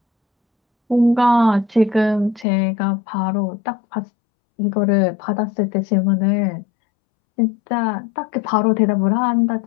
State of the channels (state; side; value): drops out; right; at 2.5 s